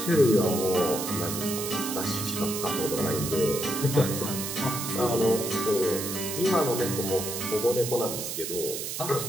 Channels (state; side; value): noise; right; hiss, 5 dB below the sound